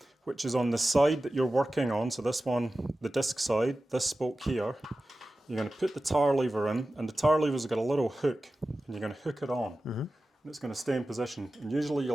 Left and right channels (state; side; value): normal; both; correlation 0.95